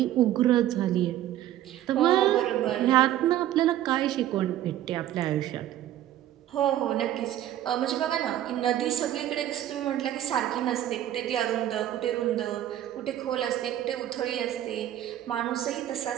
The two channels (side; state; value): left; quieter; 12.5 dB